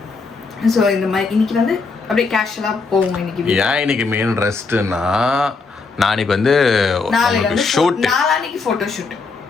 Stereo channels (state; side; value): quieter; right; 4.4 dB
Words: ஸோ இந்த மாதிரி இன்றைக்கி வந்து அப்படியே கேஷுவலாக போவோம். இன்னைக்கு மெயின் ரெஸ்ட்னா நாளைக்கு வந்து ஷூட், நாளான்னைக்கு ஃபோட்டோ ஷூட்,